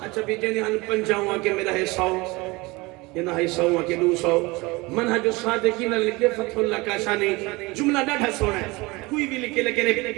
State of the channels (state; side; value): quieter; left; 23.5 dB